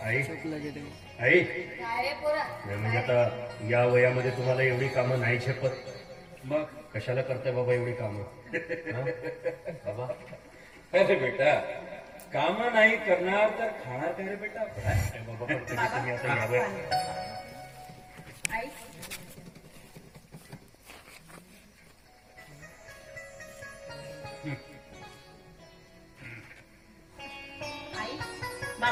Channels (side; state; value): both; identical; correlation 1.00